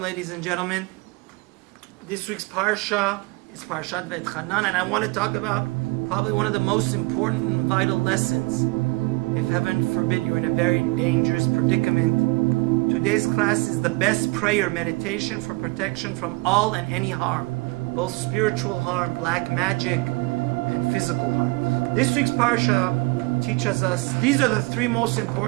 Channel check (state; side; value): quieter; left; 24.8 dB